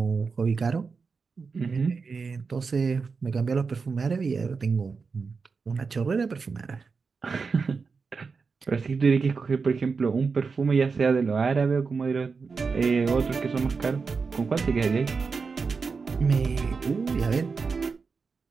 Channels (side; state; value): left; quieter; 4.9 dB